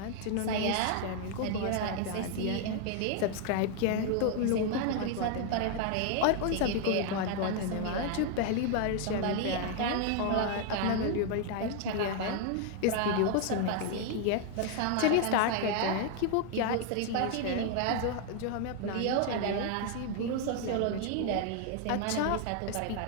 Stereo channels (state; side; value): different; both; correlation 0.00